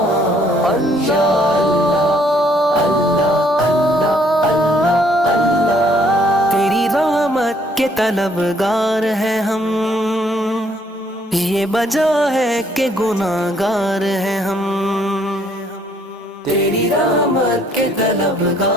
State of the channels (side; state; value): both; normal; correlation 0.65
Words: یا تیری رحمت کے طلبگار ہیں ہم، یہ وجہ ہے کہ گناہگار ہیں ہم، تیری رحمت کے